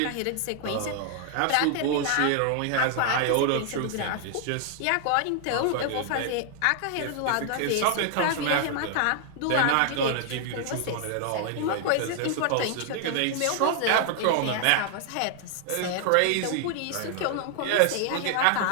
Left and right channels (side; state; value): both; different; correlation 0.00